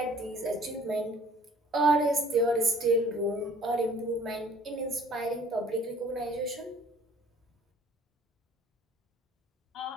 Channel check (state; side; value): normal; both; correlation 0.53